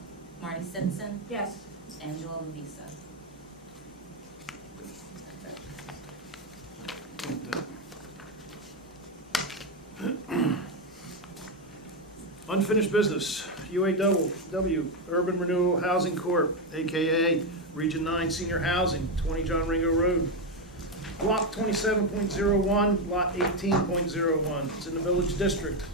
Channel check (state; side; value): normal; both; correlation 0.07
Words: Marty Simpson, Yes. Angela Lavisa. Unfinished business, UAW, Urban Renewal Housing Corp., AKA Region 9 Senior Housing, 20 John Ringo Road. Block 27.01, Lot 18.01. It's in the Village District.